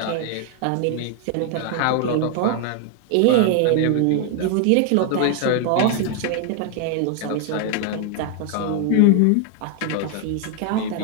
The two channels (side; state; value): both; different; correlation 0.00